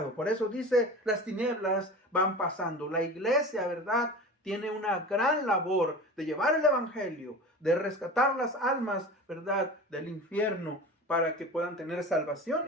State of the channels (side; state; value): both; normal; correlation 0.34